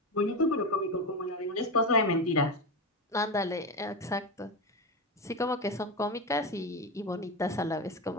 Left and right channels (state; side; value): normal; both; correlation 0.18